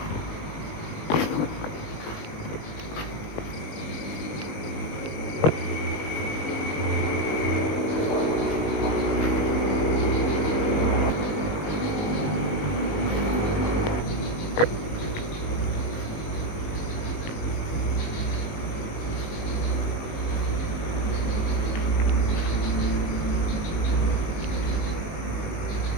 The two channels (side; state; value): right; late; 19 ms